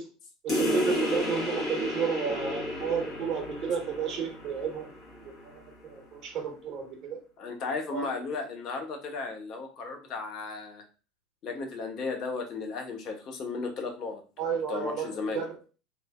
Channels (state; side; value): normal; both; correlation 0.51